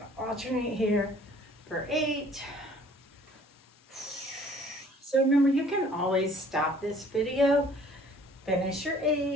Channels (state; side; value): normal; both; correlation 0.55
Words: to alternate here for 8. So remember, you can always stop this video, finish your